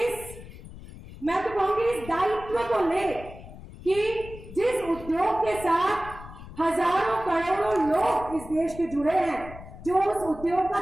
मैं तो कहूंगी इस दायित्व को ले कि जिस उद्योग के साथ हजारों करोड़ों लोग इस देश के जुड़े हैं, जो उस उद्योग का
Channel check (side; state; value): left; noise; rumble, 15 dB below the sound